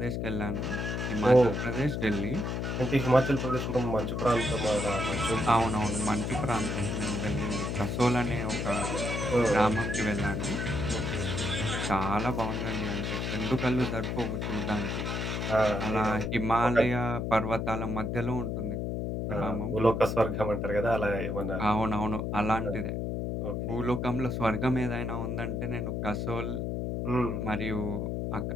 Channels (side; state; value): left; noise; hum, 2 dB below the sound